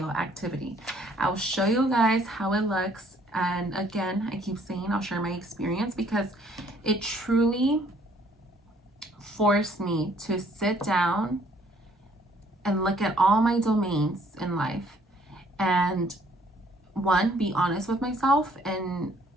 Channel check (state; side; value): normal; both; correlation 0.62